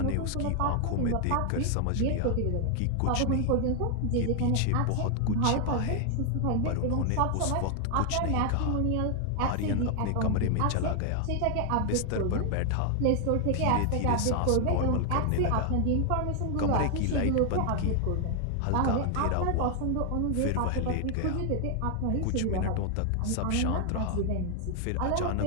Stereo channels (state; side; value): different; both; correlation 0.00